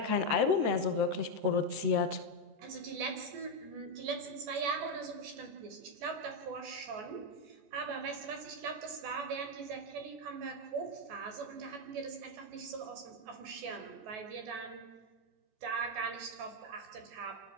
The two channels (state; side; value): late; left; 14 ms